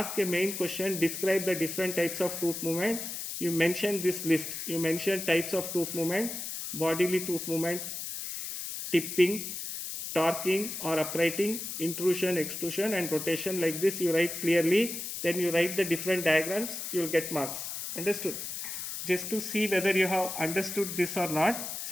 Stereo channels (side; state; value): left; noise; hiss, 6 dB below the sound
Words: a main question, describe the different types of tooth movement, you mention this list. You mention types of tooth movement, bodily tooth movement, tipping, torquing or uprighting, intrusion, extrusion and rotation. Like this you write clearly, then you write the different diagrams, you will get marks. Understood? Just to see whether you have understood this or not,